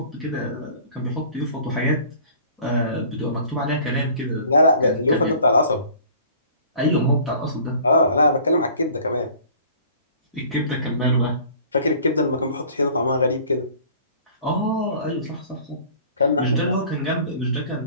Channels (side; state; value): both; inverted; correlation -0.48